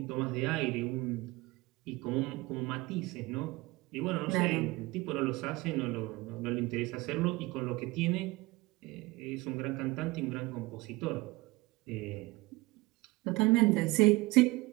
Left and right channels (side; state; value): left; quieter; 21.9 dB